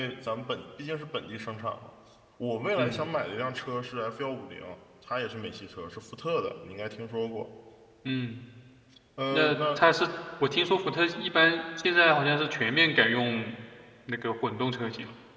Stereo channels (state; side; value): identical; both; correlation 1.00